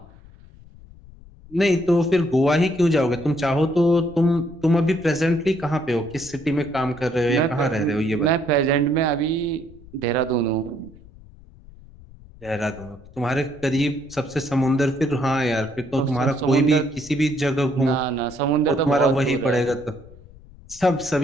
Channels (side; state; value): left; noise; rumble, 22 dB below the sound